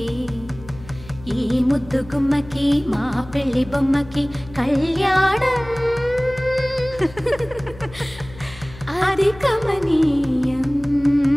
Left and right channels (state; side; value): noise; left; hum, 18 dB below the sound